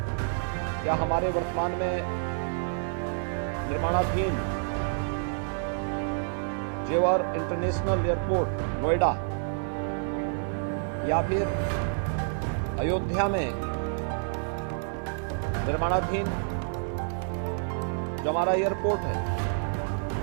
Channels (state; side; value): silent; left; digital silence